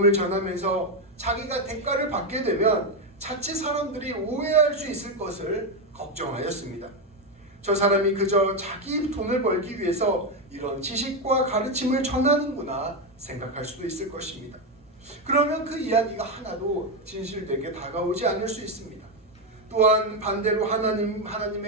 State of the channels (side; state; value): both; normal; correlation 0.08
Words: 전하면서 자기가 대가를 받게 되면 자칫 사람들이 오해할 수 있을 것을 걱정하였습니다. 저 사람이 그저 자기 돈을 벌기 위해서 이런 지식과 가르침을 전하는구나 생각할 수도 있을 것입니다. 그러면 그 이야기가 하나도 진실되게 다가오지 않을 수 있습니다. 또한 반대로